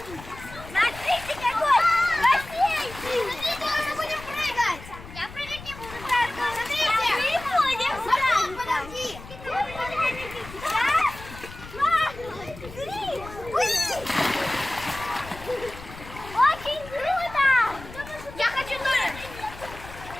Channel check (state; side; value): noise; left; rumble, 15 dB below the sound